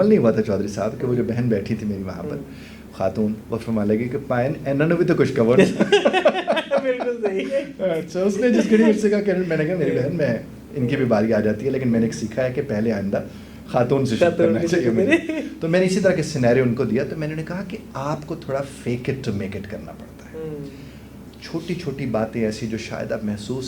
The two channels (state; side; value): identical; both; correlation 1.00